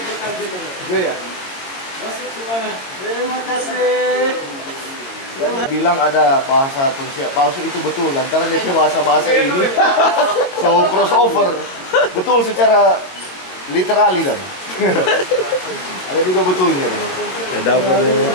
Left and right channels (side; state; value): right; late; 22 ms